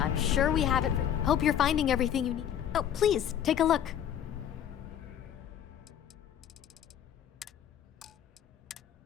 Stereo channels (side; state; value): right; quieter; 9.9 dB